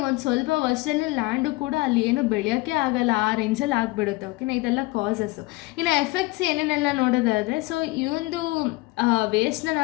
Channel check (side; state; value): right; quieter; 22.4 dB